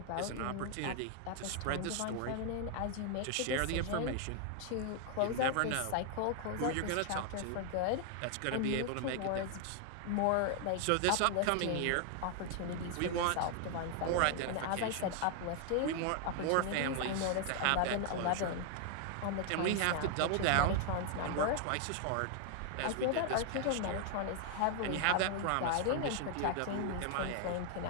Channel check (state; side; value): different; both; correlation 0.00